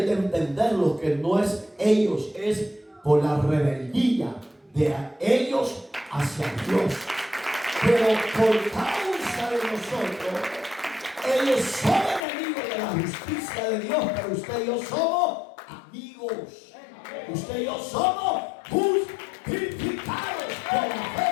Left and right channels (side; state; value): right; drops out; at 12.2 s